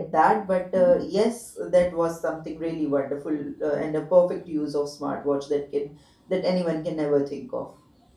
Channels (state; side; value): identical; both; correlation 1.00